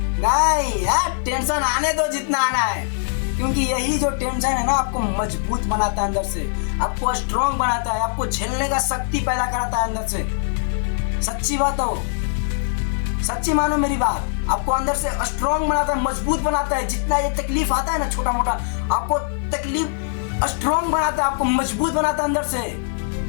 नहीं यार, टेंशन आने दो जितना आना है, क्योंकि यही जो टेंशन है ना आपको मजबूत बनाता है अंदर से, आपको स्ट्रॉन्ग बनाता है, आपको झेलने का शक्ति पैदा कराता है अंदर से। सच्ची बात हो, सच्ची मानो मेरी बात, आपको अंदर से स्ट्रॉन्ग बनाता है, मजबूत बनाता है। जितना ये तकलीफ आता है ना छोटा मोटा, आपको तकलीफ स्ट्रॉन्ग बनाता है, आपको मजबूत बनाता है अंदर से।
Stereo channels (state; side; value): silent; right; digital silence